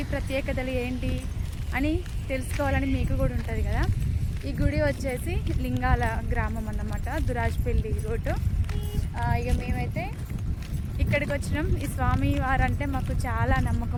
ప్రత్యేకతలు ఏంటి అని తెలుసుకోవాలని మీకు కూడా ఉంటుంది కదా. ఈ గుడి వచ్చేసి లింగాల గ్రామం అన్నమాట, దురాజ్పల్లి రోడ్డు. ఇక మేమైతే ఇక్కడికి వచ్చినాం. ఈ స్వామి వారంటే మాకు చాలా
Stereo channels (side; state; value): both; identical; correlation 1.00